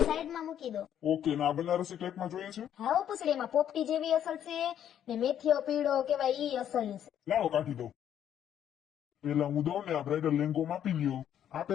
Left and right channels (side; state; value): right; quieter; 10.0 dB